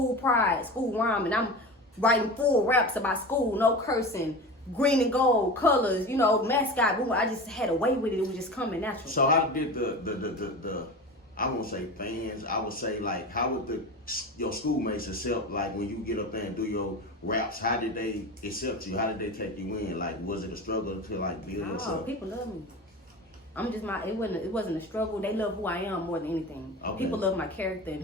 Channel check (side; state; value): both; normal; correlation 0.30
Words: pride, school rhyme, and I'm writing full raps about school, no cursing, green and gold colors, mascot. I just had a way with it. It was just coming natural. So how did the I won't say fans, I would say like how would your schoolmates accept, like when you get up there and do your raps, how did they accept you? How did they take you in? Like, was it a struggle to like build yourself? People love me. I'm just it wasn't a struggle. They love who I am more than anything. Okay. People love my character and